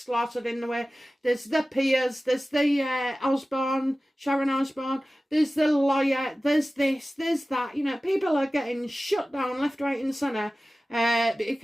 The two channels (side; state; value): both; normal; correlation 0.96